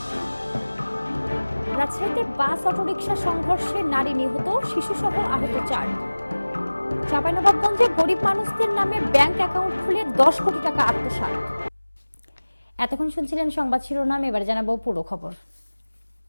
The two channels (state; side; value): inverted; both; correlation -1.00